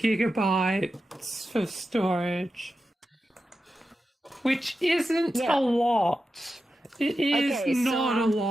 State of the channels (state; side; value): normal; both; correlation 0.91